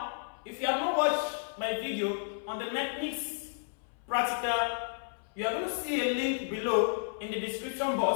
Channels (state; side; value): silent; right; 56 dB below the other